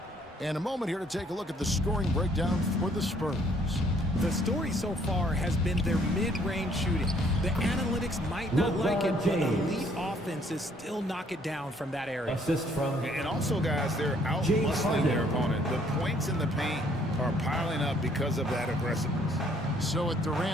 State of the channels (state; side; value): normal; both; correlation 0.64